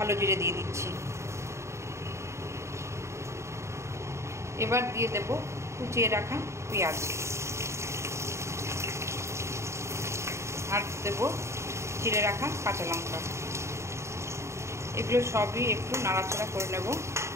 জিরে দিয়ে দিচ্ছি। এবার দিয়ে দেব কুচিয়ে রাখা পেঁয়াজ আর দেব চিড়ে রাখা কাঁচা লঙ্কা। এগুলো সবই একটু নাড়াচাড়া করে নেব।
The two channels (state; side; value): late; left; 0.14 ms